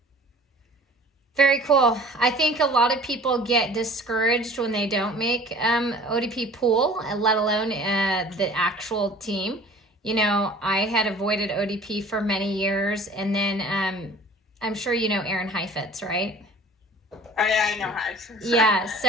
Very cool. I think a lot of people get discouraged when they don't make ODP pool, let alone the actual team. You know, I had avoided ODP for many years, and then I'm sure you know Aaron Heifetz, right? Oh, yeah, I know Heif. Yeah, so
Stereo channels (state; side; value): normal; both; correlation 0.46